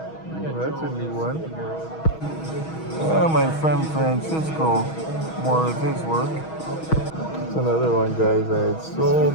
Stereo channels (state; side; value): late; right; 6.3 ms